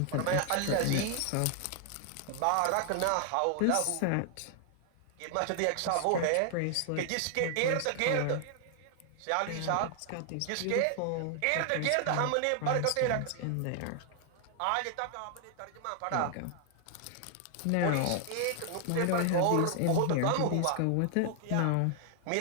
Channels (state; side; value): different; both; correlation 0.00